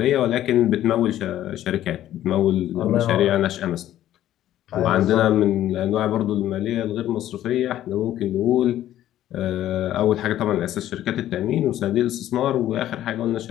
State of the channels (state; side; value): quieter; right; 12.7 dB